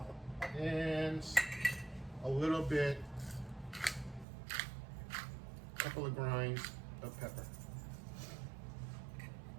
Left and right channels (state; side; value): drops out; left; at 4.2 s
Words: and a little bit couple of grinds of pepper.